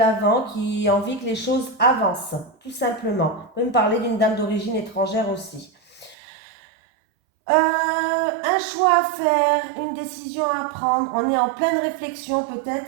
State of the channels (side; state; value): left; drops out; at 6.2 s